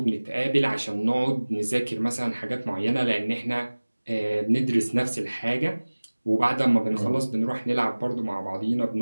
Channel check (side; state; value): both; inverted; correlation -1.00